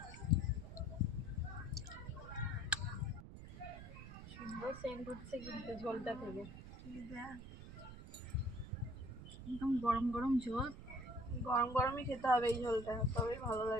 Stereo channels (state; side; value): noise; right; rumble, 13 dB below the sound